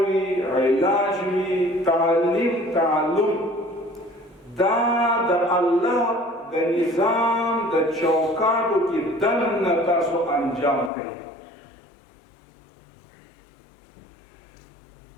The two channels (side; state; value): right; drops out; at 10.9 s